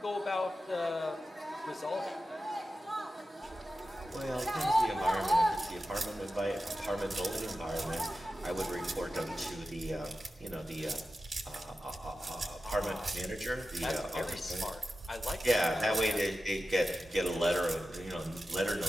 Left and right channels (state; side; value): normal; both; correlation 0.93